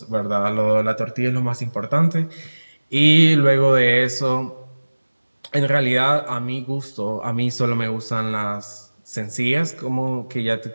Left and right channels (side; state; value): both; inverted; correlation -1.00